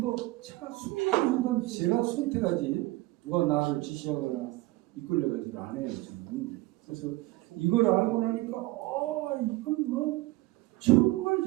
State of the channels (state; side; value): quieter; left; 19.5 dB